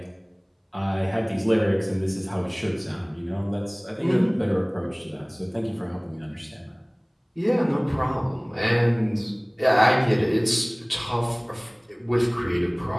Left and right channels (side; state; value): both; identical; correlation 1.00